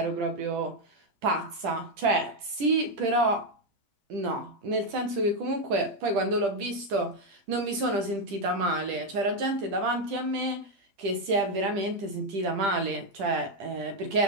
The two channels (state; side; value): late; left; 10 ms